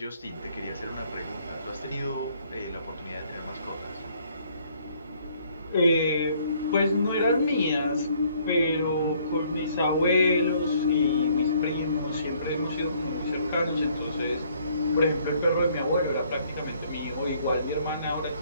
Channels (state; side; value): inverted; both; correlation -0.64